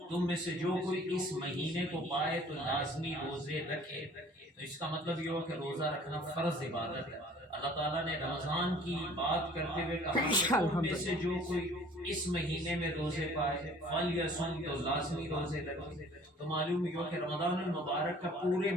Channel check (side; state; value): both; normal; correlation 0.52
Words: تم میں سے جو کوئی اس مہینے کو پائے تو لازمی روزے رکھے۔ تو اس کا مطلب یہ ہو کہ روزہ رکھنا فرض عبادت ہے۔ اللہ تعالیٰ نے رمضان کی بات کرتے ہوئے کہا کہ تم میں سے جو کوئی اس مہینے میں روزے پائے فلیصم، تو لازمی روزے رکھے۔ تو معلوم ہوا کہ رمضان المبارک کا پورے